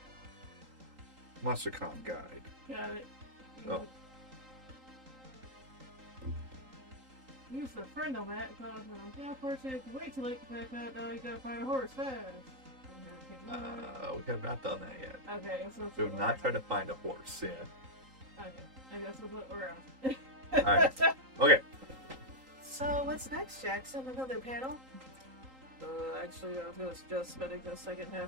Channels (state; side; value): late; left; 3.8 ms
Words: MonsterCon guide. Got it. Oh. Use the friend on that because unfortunately, if you wait too late to pack out, now you gotta find a horse fast. We have not done that yet. Okay, so We have not tried to find a horse, yeah. Okay, I guess that's what we're on. Alright. Okay. So what's next, Jackson? Another panel? Actually, I was gonna suggest spending the second